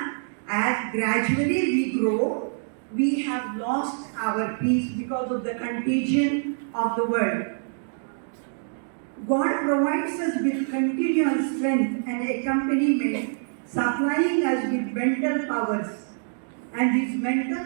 as gradually we grow, we have lost our peace because of the contagion of the world. God provides us with continuous strength and accompaniment, supplying us with mental powers. And these mental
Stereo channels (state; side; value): silent; left; digital silence